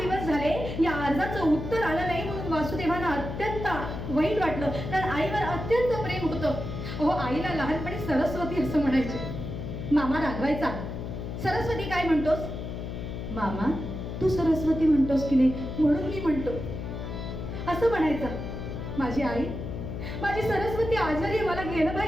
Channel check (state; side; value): noise; left; hum, 6 dB below the sound